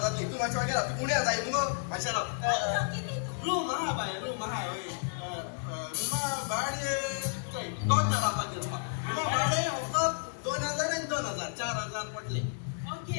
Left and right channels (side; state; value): right; silent; digital silence